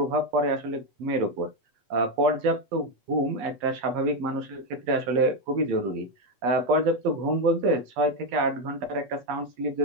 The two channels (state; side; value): late; left; 8.3 ms